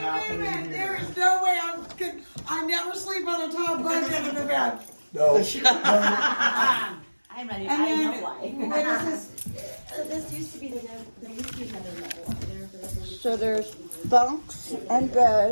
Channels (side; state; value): both; inverted; correlation -1.00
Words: here. There is no way I never sleep on a top bunk in the bed. No. I'm ready. And I then, know why. what is this? So this used to be there used to be another level up there, but So there's bunks and